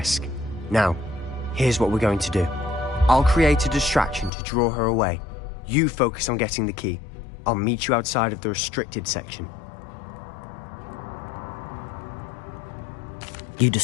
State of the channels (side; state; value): right; drops out; at 4.3 s